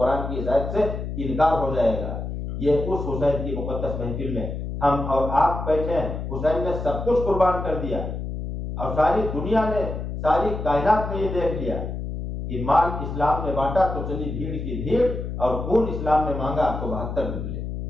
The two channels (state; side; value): noise; left; hum, 5 dB below the sound